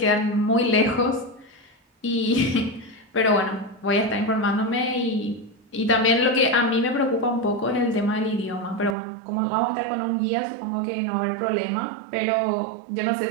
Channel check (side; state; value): left; drops out; at 9.0 s